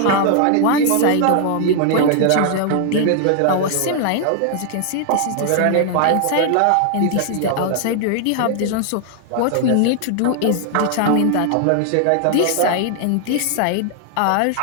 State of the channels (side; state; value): both; different; correlation 0.00